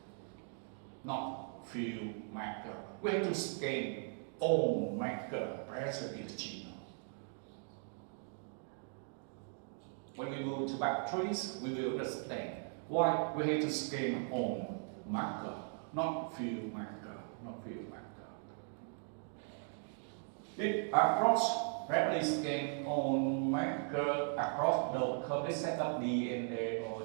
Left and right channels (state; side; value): silent; left; 52 dB below the other